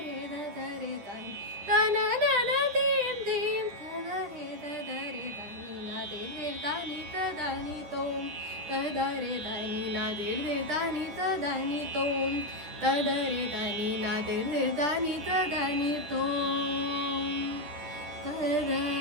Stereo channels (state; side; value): late; left; 10 ms